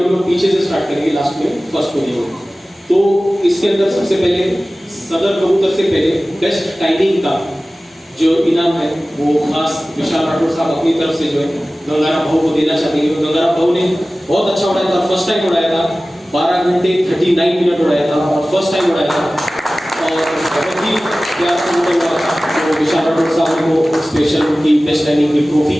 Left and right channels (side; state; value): both; normal; correlation 0.97